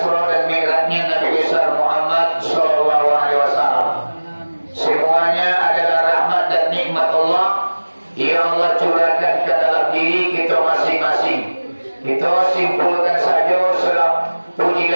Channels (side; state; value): both; inverted; correlation -1.00